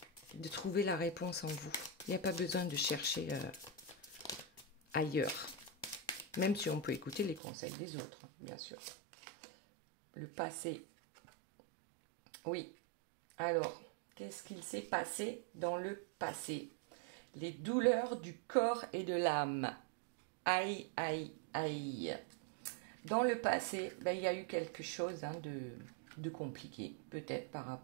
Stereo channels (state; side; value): drops out; left; at 7.4 s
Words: trouver la réponse en vous. Il n'y a pas besoin de chercher ailleurs. Même si on peut écouter les conseils des autres, bien sûr. Le passé. Oui. Alors, qu'est-ce qu'il s'est passé dans le passé? Les douleurs du corps et de l'âme. Aïe, aïe, aïe. Dans le passé, il y a eu quelque chose de compliqué, peut-être par